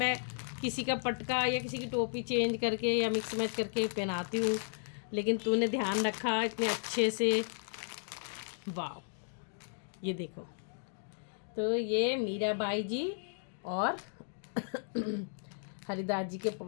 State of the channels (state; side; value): silent; right; digital silence